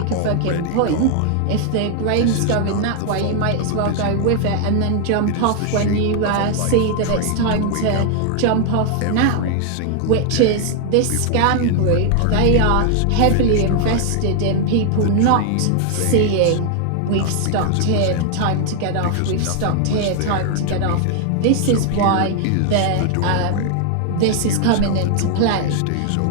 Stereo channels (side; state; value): both; different; correlation 0.00